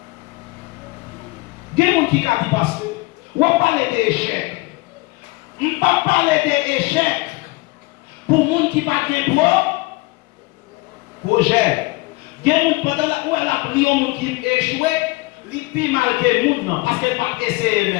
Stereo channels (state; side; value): quieter; right; 23.6 dB